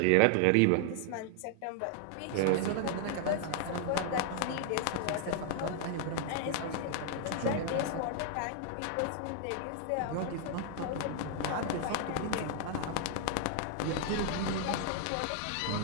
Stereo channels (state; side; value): different; both; correlation 0.00